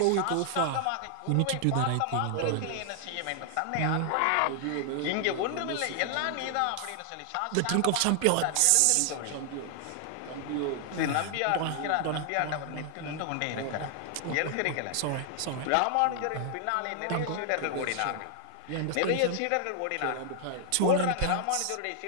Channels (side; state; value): both; different; correlation 0.00